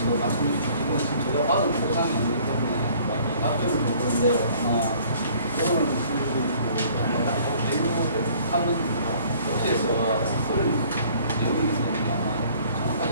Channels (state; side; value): inverted; both; correlation -0.55